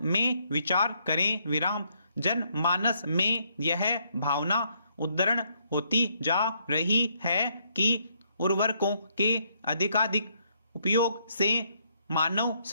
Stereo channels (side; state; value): both; inverted; correlation -0.72